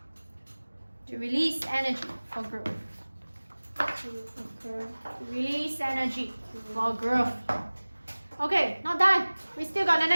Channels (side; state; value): both; inverted; correlation -1.00